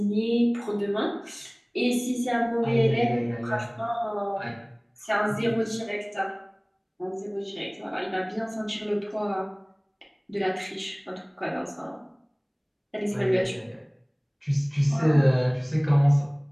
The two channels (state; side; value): identical; both; correlation 1.00